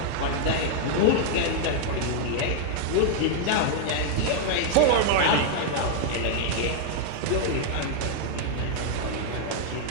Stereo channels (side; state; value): both; different; correlation 0.00